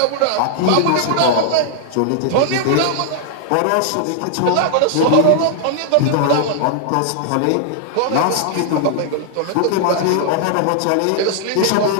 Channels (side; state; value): both; different; correlation -0.01